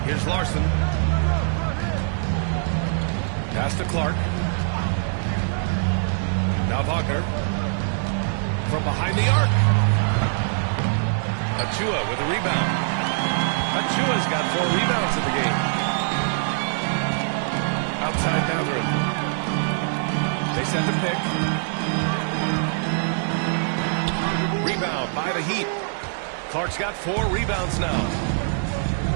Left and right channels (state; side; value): silent; left; digital silence